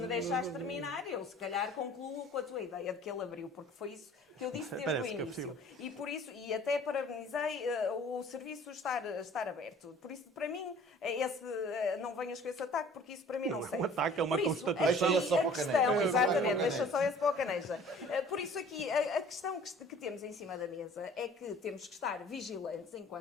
deixares terminar, eu se calhar concluo com a tua ideia de que ele abriu, porque foi isso que eu disse desde o início. E por isso, e até parabenizei o serviço estar aberto. Por isso, para mim, não venhas com esse ataque, porque isso para mim não serve. É um ataque, é uma Por isso, constatação. Deixa só para o Caneja. Exatamente, deixa só esse para o Caneja. Por isso aqui, a questão que temos em cima da mesa é que temos que estar vigilantes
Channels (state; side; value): normal; both; correlation 0.50